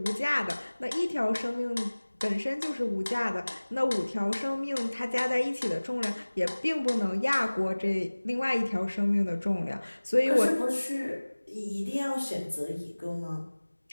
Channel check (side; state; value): both; inverted; correlation -1.00